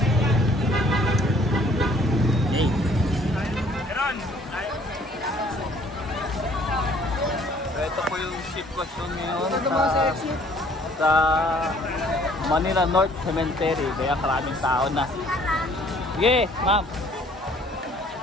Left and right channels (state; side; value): normal; both; correlation 0.58